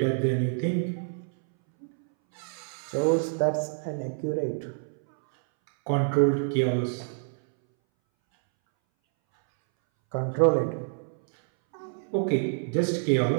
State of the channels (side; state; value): left; silent; 60 dB below the other